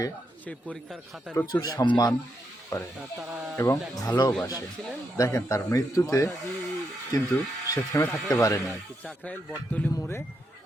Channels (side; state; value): both; normal; correlation 0.81